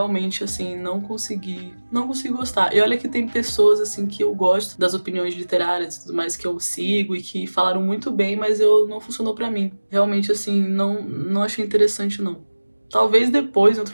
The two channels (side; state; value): both; inverted; correlation -1.00